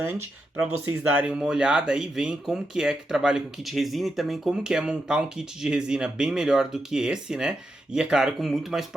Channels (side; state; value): both; normal; correlation 0.85